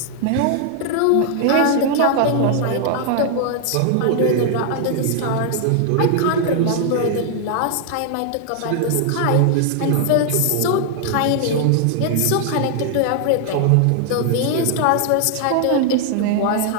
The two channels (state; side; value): different; both; correlation 0.00